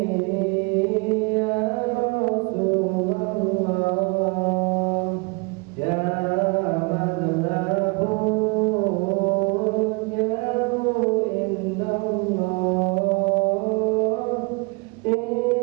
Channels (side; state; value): left; quieter; 30.6 dB